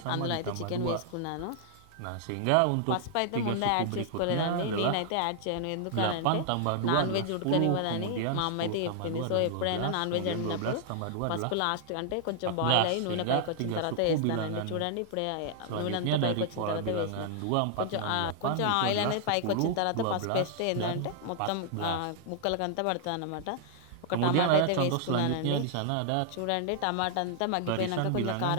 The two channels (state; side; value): different; both; correlation -0.01